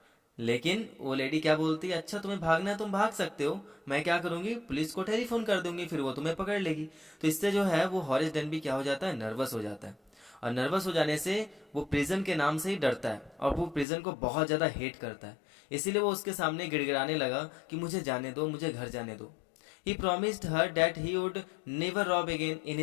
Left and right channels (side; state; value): right; drops out; at 13.9 s